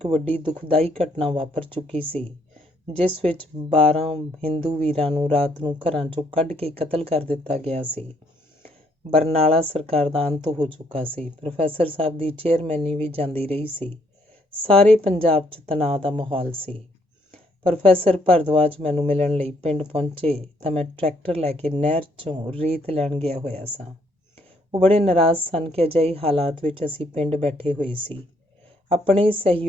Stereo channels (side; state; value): both; normal; correlation 0.69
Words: ਵੱਡੀ ਦੁਖਦਾਈ ਘਟਨਾ ਵਾਪਰ ਚੁੱਕੀ ਸੀ, ਜਿਸ ਵਿੱਚ 12 ਹਿੰਦੂ ਵੀਰਾਂ ਨੂੰ ਰਾਤ ਨੂੰ ਘਰਾਂ 'ਚੋਂ ਕੱਢ ਕੇ ਕਤਲ ਕਰ ਦਿੱਤਾ ਗਿਆ ਸੀ। ਬਰਨਾਲਾ ਸਰਕਾਰ ਦਾ ਅੰਤ ਹੋ ਚੁੱਕਾ ਸੀ। ਪ੍ਰੋਫੈਸਰ ਸਾਹਿਬ ਦੀ ਚੇਅਰਮੈਨੀ ਵੀ ਜਾਂਦੀ ਰਹੀ ਸੀ। ਸਾਰੇ ਪੰਜਾਬ 'ਚ ਤਣਾਅ ਦਾ ਮਾਹੌਲ ਸੀ। ਪ੍ਰੋਫੈਸਰ ਭਰਦਵਾਜ ਮੈਨੂੰ ਮਿਲਣ ਲਈ ਪਿੰਡ ਪਹੁੰਚੇ ਤਾਂ ਮੈਂ ਟਰੈਕਟਰ ਲੈ ਕੇ ਨਹਿਰ 'ਚੋਂ ਰੇਤ ਲੈਣ ਗਿਆ ਹੋਇਆ ਸਾਂ। ਉਹ ਬੜੇ ਨਾਰਾਜ਼ ਸਨ ਕਿ ਅਜਿਹੇ ਹਾਲਾਤ ਵਿੱਚ ਅਸੀਂ ਪਿੰਡ ਬੈਠੇ ਹੋਏ ਸੀ। ਆਪਣੇ